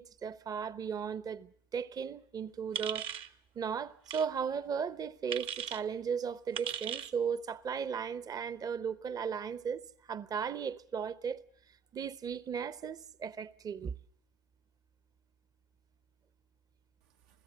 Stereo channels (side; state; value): left; quieter; 6.7 dB